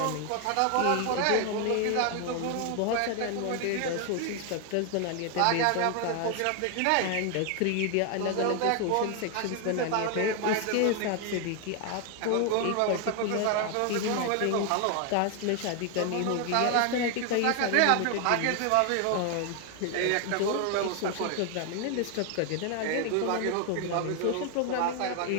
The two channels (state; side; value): different; both; correlation 0.01